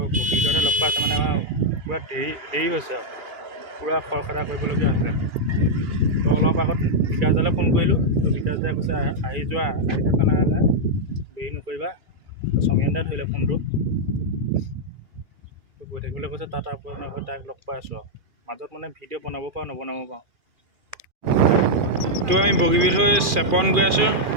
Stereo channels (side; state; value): left; late; 2.4 ms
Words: বগীবিলতহে লগ পাইছোঁ। মানে আমাৰ পূৰা দেৰি হৈছে আৰু পূৰা খৰখেদা কৰিবলগীয়া হৈছে। তো অলপ আগত বিকাশদালৈ ফোন কৰিলোঁ। তো বিকাশদাই কৈছে আহি যোৱা, আহি থকা নাই দেৰি নকৰিবা। তো সমীৰণ দাই ধৰিলে ফোনটো, তো গৈ থাকিবলৈ কৈছে। তাত আপোনালোকৰ ডাইৰেক্ট লগ পাই আছোঁ আৰু মাজত মানে ভিডিঅ' বনাব পাৰোঁ নবনাব পাৰোঁ। তো আমি বগীবিল হৈ চেপন গৈ আছোঁ,